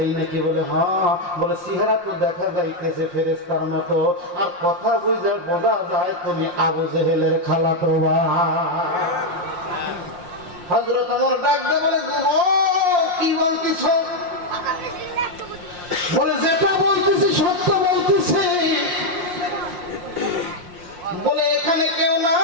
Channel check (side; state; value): left; late; 5.6 ms